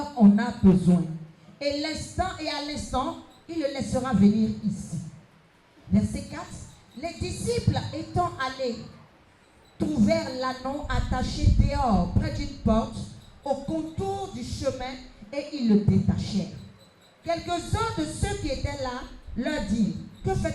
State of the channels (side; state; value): both; identical; correlation 1.00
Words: en a besoin. Et à l'instant, il le laissera venir ici. Verset 4. Les disciples étant allés, trouvèrent l'anneau attaché dehors, près d'une porte, au contour du chemin, et ils le détachèrent. Quelques-uns de ceux qui étaient là leur dirent: que